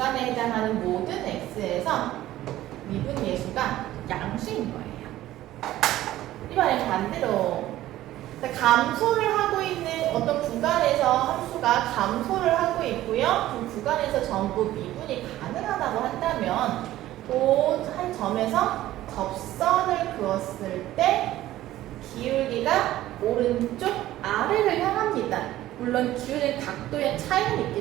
해당하는 모든 x에서 미분 예수가 양수인 거예요. 이번엔 반대로 감소를 하고 있는 어떤 구간에서 함수가 감소를 하고 있고요. 그 구간에서 전부 미분이 가능하다고 한다면 그 한 점에서 접선을 그었을 때 기울기가 오른쪽 아래를 향합니다. 물론 기울의 각도의 차이는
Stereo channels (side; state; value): left; quieter; 14.7 dB